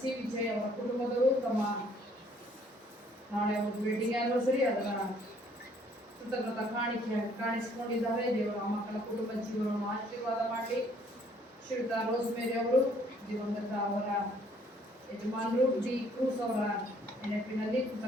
ವಿಜಯ್ ಅವರ ಕುಟುಂಬದವರು ತಮ್ಮ ನಾಳೆ ಒಂದು ವೆಡ್ಡಿಂಗ್ ಆನಿವರ್ಸರಿ ಅದರ ಕೃತಜ್ಞತಾ ಕಾಣಿಕೆ ಕಾಣಿಸಿಕೊಂಡಿದ್ದಾರೆ. ದೇವರ ಮಕ್ಕಳ ಕುಟುಂಬ ಜೀವನವನ್ನು ಆಶೀರ್ವಾದ ಮಾಡಲಿ. ಶ್ರೀಯುತ ರೋಸ್ಮೇರಿ ಅವರು ದಿವಂಗತ ಅವರ ಯಜಮಾನರು ಡಿ ಕ್ರೂಸ್ ಅವರ ನೆನಪಿನಲ್ಲಿ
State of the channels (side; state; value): both; normal; correlation 0.62